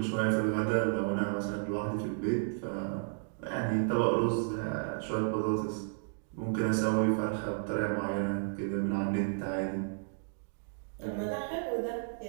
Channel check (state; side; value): silent; left; digital silence